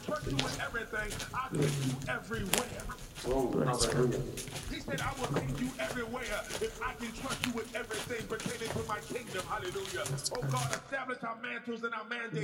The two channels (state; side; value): identical; both; correlation 1.00